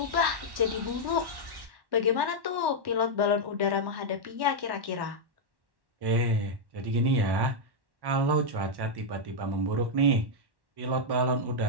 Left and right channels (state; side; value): late; left; 1.1 ms